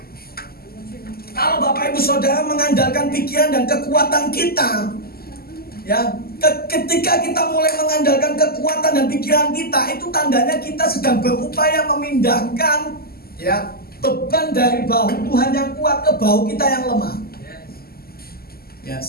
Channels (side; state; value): right; late; 0.45 ms